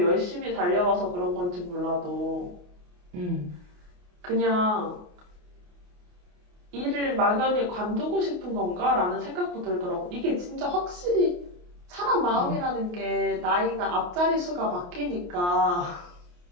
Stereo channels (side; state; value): left; late; 28 ms